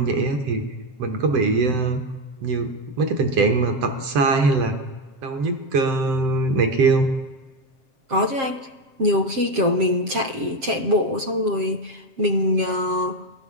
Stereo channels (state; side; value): late; left; 7.5 ms